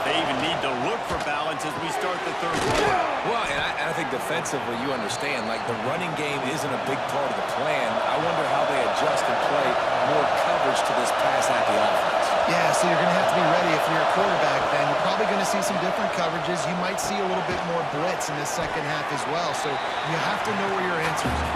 they even need to look for balance as we start the third quarter. Well, and I think defensively, you understand, like the running game isn't a big part of the plan. I wonder how they adjust and play more coverage to this pass-happy offense. Yeah, so you're going to have to be ready if you're a quarterback then. You're probably going to see some different coverages. You might see a little bit more blitz in the second half as well. So you have to know where your answers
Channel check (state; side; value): identical; both; correlation 1.00